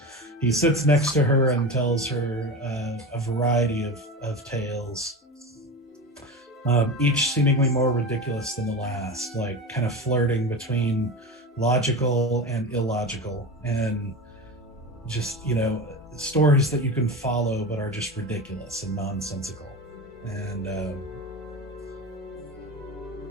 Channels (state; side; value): normal; both; correlation 0.26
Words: he sits next to her and tells her a variety of tales. Each seemingly more ridiculous than the last, like kind of flirting between logical and illogical, and just, stories that you can follow but are just ridiculous and nonsensical. And, at